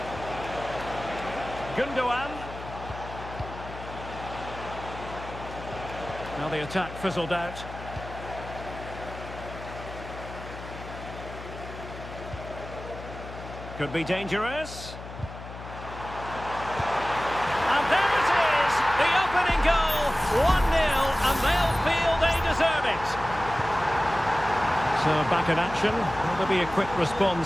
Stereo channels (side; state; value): left; noise; hum, 12 dB below the sound